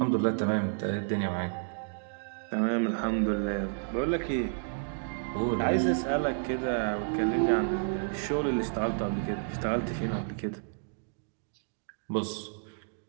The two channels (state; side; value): silent; left; digital silence